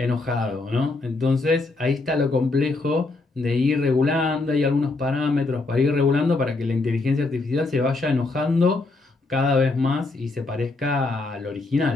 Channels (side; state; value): right; quieter; 3.4 dB